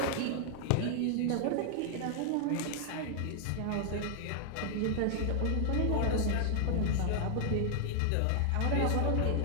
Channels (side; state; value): both; different; correlation 0.00